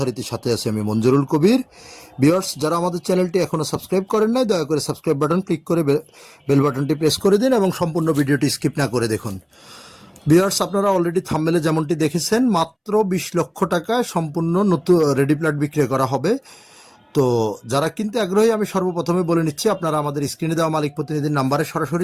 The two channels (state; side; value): identical; both; correlation 1.00